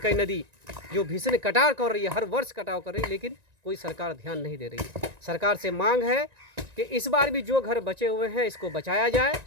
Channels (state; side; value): late; left; 1.9 ms